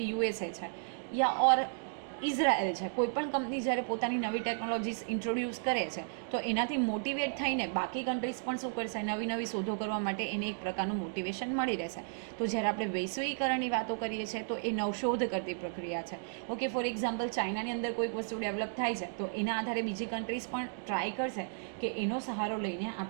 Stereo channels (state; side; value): silent; left; digital silence